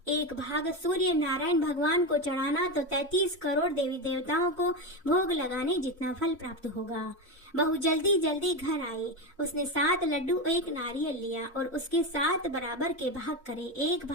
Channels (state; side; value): normal; both; correlation 0.16